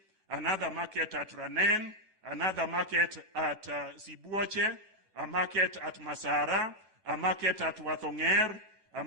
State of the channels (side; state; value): left; late; 9.2 ms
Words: another market at Ranen, another market at Sibuoche, a market at Masara, a market at Wathonger, a